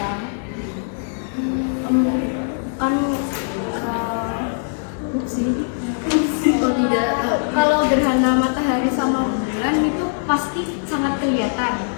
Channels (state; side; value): silent; right; digital silence